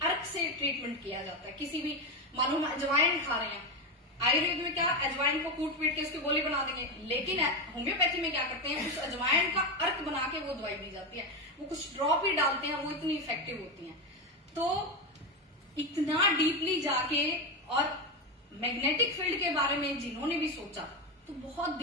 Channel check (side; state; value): both; normal; correlation 0.12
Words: अर्क से ट्रीटमेंट किया जाता है। किसी भी, मालूम अजवाइन खा रहे हैं, आयुर्वेद में क्या अजवाइन को कूट पीट के उसकी गोली बना देंगे, लेकिन होम्योपैथी में क्या करते हैं, उस अजवाइन का अर्क बना के वो दवाई दी जाती है। वो कुछ ड्रॉप ही डालते हैं, वो इतनी इफेक्टिव होती है। तो इतना डीपली जाके और मैग्नेटिक फील्ड के बारे में जिन्होंने भी सोचा तो बहुत